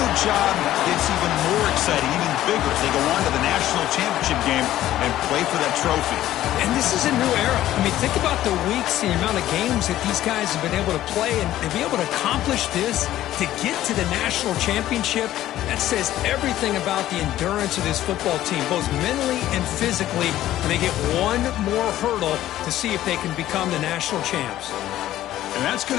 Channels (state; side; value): quieter; right; 13.6 dB